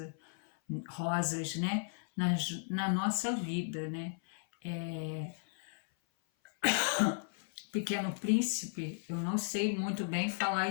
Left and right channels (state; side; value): silent; right; 54 dB below the other